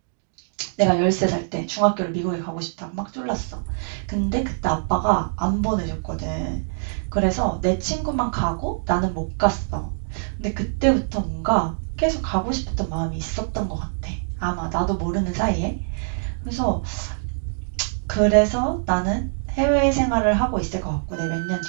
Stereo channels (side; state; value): left; silent; digital silence